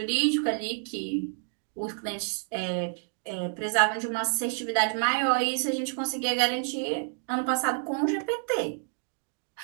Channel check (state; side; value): silent; left; digital silence